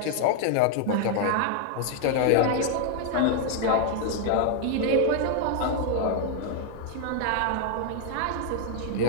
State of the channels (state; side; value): different; both; correlation 0.00